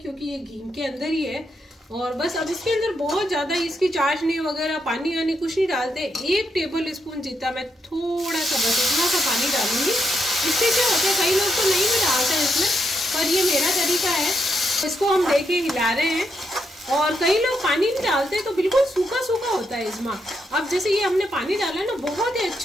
ये घी के अंदर ही है। और बस अब इसके अंदर बहुत ज्यादा इसकी चाशनी वगैरह पानी वानी कुछ नहीं डालते। 1 टेबल स्पून जितना मैं थोड़ा सा बस इतना सा पानी डालूंगी। इससे क्या होता है, कई लोग तो नहीं भी डालते हैं इसमें, पर ये मेरा तरीका है। इसको हम देखिए हिला रहे हैं, और कई लोग पानी नहीं डालते तो बिल्कुल सूखा सूखा होता है इजमा। अब जैसे ये हमने पानी डाला है ना, बहुत ही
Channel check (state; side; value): normal; both; correlation 0.81